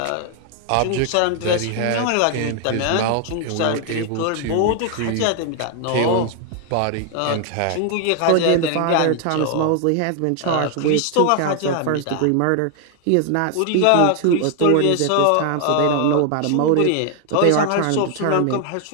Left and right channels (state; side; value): different; both; correlation 0.00